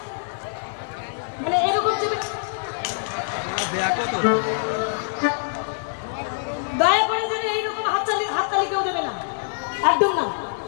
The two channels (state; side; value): silent; right; digital silence